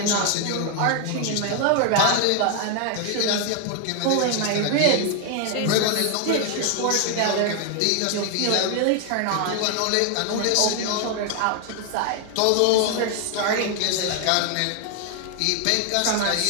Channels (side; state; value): both; different; correlation 0.00